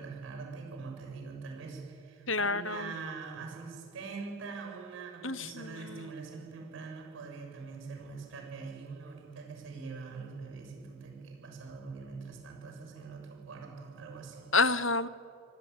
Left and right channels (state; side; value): normal; both; correlation 0.18